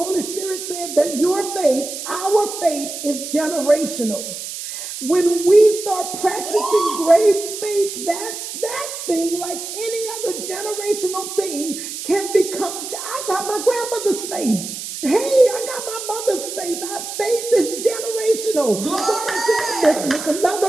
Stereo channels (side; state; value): right; noise; hiss, 8 dB below the sound